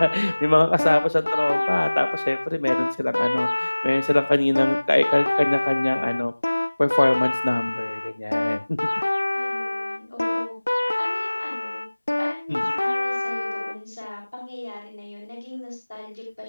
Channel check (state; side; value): inverted; both; correlation -1.00